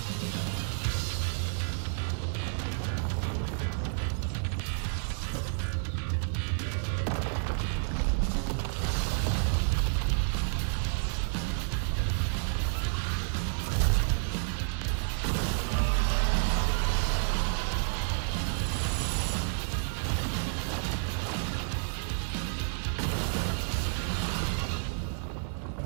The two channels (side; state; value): left; silent; digital silence